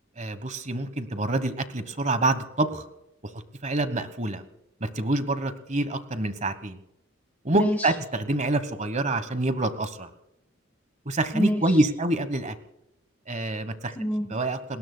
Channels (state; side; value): normal; both; correlation 0.48